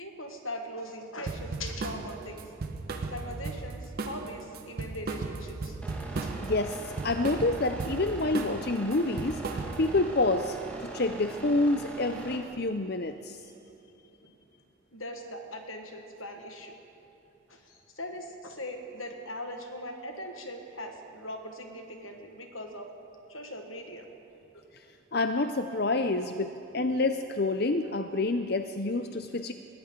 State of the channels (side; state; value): both; normal; correlation 0.19